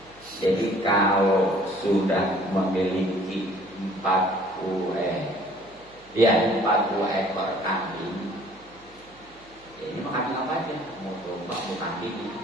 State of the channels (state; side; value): noise; right; hum, 27 dB below the sound